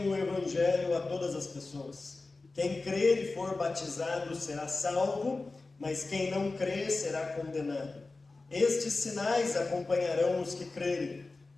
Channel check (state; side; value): quieter; right; 3.5 dB